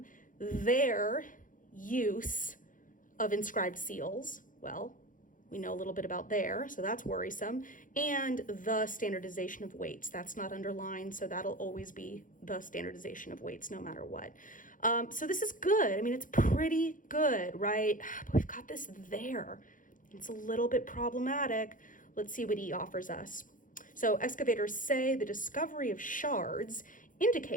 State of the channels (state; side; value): late; right; 0.39 ms